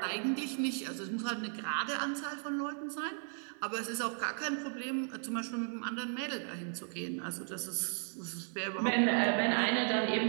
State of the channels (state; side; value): silent; left; 54 dB below the other